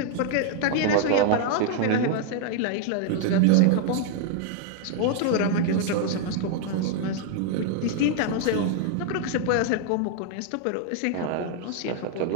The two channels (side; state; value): both; different; correlation 0.00